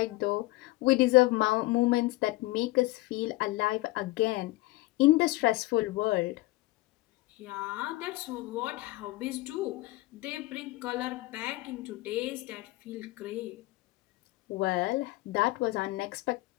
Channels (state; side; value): quieter; right; 20.1 dB